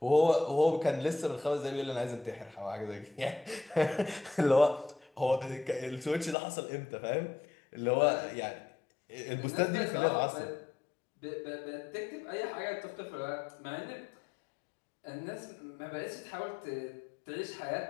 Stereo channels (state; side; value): drops out; right; at 6.4 s